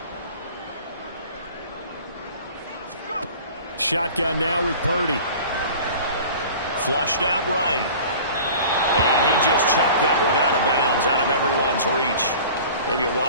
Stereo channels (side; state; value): both; inverted; correlation -0.42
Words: Shotgun now with Purdy. Flushed out right. And he just chucked that one out of bounds, out of everyone's reach. Maybe a